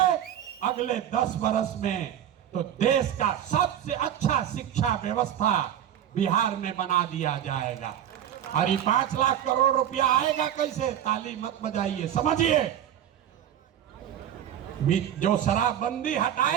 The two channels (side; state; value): left; quieter; 10.5 dB